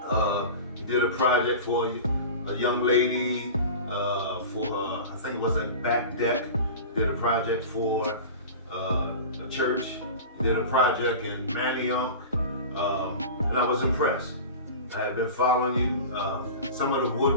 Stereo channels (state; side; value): inverted; both; correlation -0.33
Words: You did a project for a young lady for I think it was a back deck. You did a project for a church. You did a project in Manioc, and I was impressed. I had been following you. Some of the